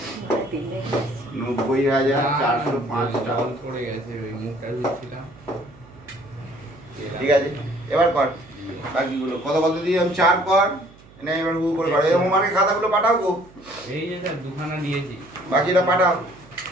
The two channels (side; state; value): right; noise; hum, 24 dB below the sound